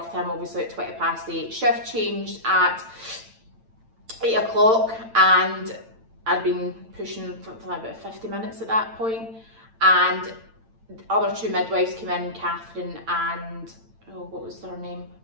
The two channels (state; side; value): late; left; 8.9 ms